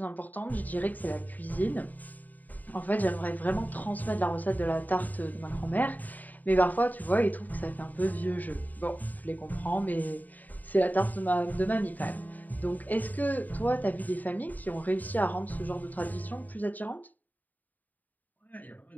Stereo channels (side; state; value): right; late; 0.082 ms